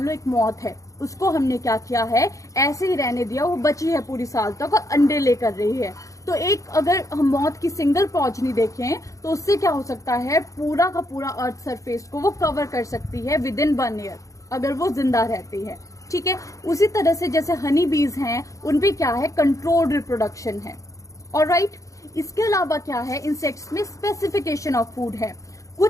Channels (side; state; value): right; late; 0.16 ms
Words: लो एक मौत है, उसको हमने क्या किया है, ऐसे ही रहने दिया, वो बची है पूरी साल तक और अंडे लेकर रही है। तो एक अगर हम मौत की सिंगल प्रोजनी देखें तो उससे क्या हो सकता है, पूरा का पूरा अर्थ सरफेस को वो कवर कर सकती है विद इन 1 ईयर, अगर वो जिंदा रहती है। ठीक है, उसी तरह से जैसे हनी बीज हैं, उनपे क्या है, कंट्रोल्ड रिप्रोडक्शन है। ऑलराइट, इसके अलावा क्या है, इंसेक्ट्स में स्पेसिफिकेशन ऑफ फूड है।